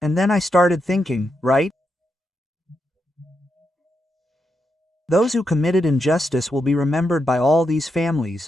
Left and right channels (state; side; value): normal; both; correlation 0.84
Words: And then I started thinking, right? Those who committed injustice will be remembered by all these families,